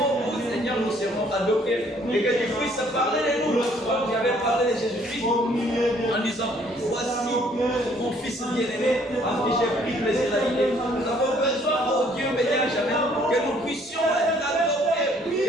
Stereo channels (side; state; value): both; normal; correlation 0.62